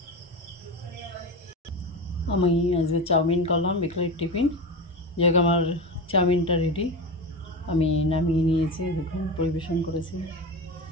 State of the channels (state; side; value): normal; both; correlation 0.23